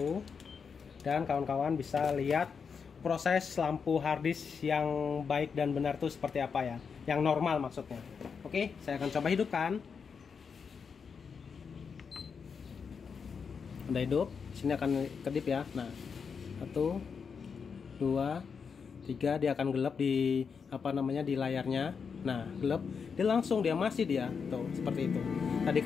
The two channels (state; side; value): quieter; right; 6.0 dB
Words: Dan kawan-kawan bisa lihat proses lampu harddisk yang baik dan benar itu seperti apa ya. Yang normal maksudnya. Oke, saya akan coba hidupkan. Udah hidup. Sini akan kedip ya. Nah, 1, 2, 3, dia akan gelap di di layarnya. Nah, gelap, dia masih tuh seperti itu. Tadi